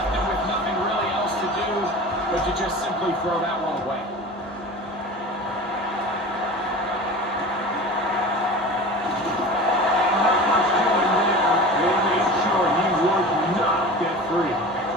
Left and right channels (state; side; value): normal; both; correlation 0.35